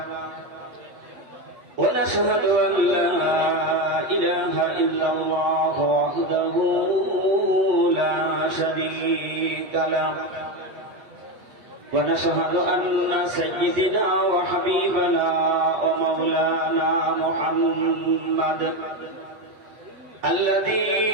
ونشهد أن لا إله إلا الله وحده لا شريك له ونشهد أن سيدنا وحبيبنا ومولانا محمد الذي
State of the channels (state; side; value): late; left; 8.3 ms